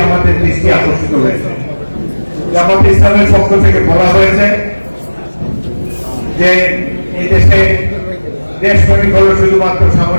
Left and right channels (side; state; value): both; inverted; correlation -1.00